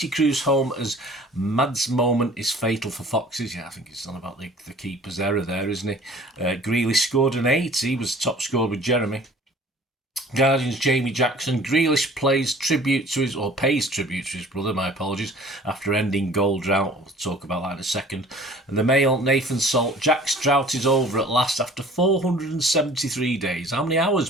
cruise home as Mad's moment is fatal for Foxes. Yeah, I think it's on about the keeper's error there, isn't he? Grealish scored an 8. He was top scorer with Jeremy. Guardian's Jamie Jackson. Grealish pays tribute to his brother, my apologies, after ending goal drought. We'll talk about that in a second. And the Mail, Nathan Salt. Jack's drought is over at last after 473 days. How many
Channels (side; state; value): both; normal; correlation 0.49